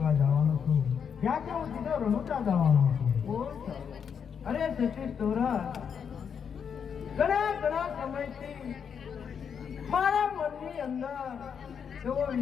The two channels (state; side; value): quieter; right; 7.2 dB